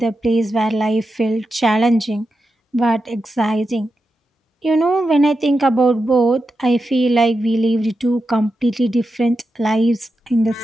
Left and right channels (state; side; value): normal; both; correlation 0.89